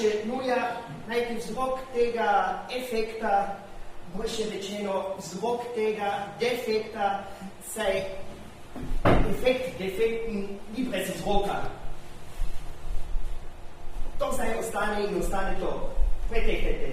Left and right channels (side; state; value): both; identical; correlation 1.00